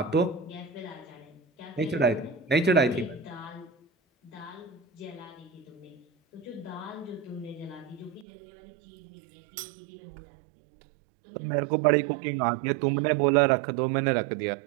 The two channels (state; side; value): drops out; left; at 8.2 s